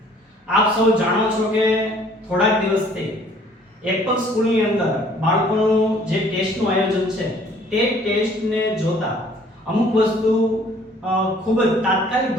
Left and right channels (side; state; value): both; normal; correlation 0.57